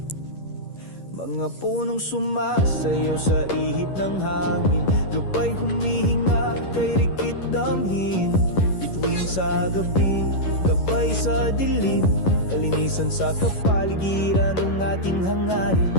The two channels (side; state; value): right; late; 11 ms